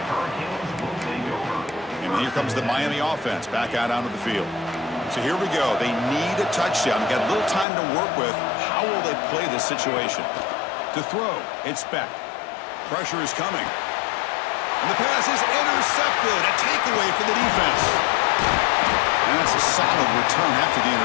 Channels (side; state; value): right; drops out; at 7.7 s